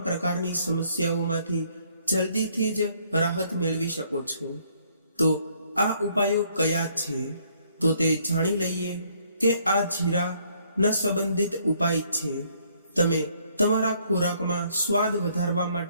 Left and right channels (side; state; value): both; inverted; correlation -0.66